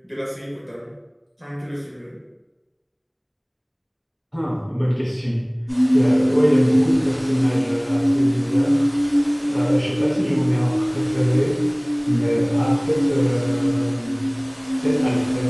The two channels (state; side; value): identical; both; correlation 1.00